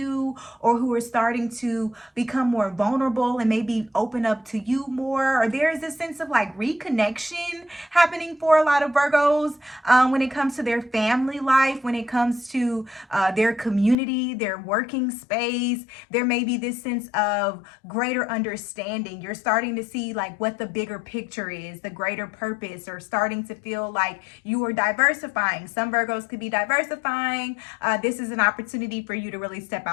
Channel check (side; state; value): right; drops out; at 14.0 s